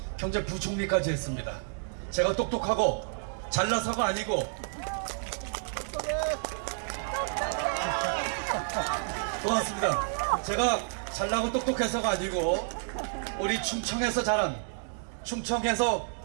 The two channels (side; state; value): left; silent; digital silence